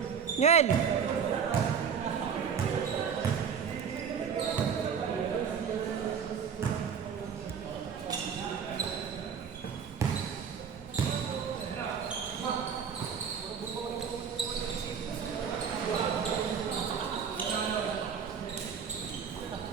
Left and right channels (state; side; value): quieter; left; 7.0 dB